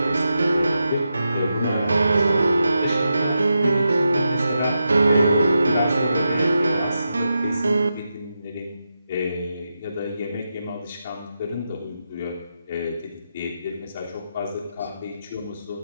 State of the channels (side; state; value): both; inverted; correlation -0.87